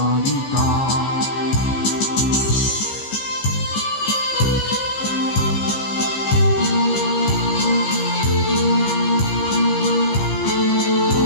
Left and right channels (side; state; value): right; late; 15 ms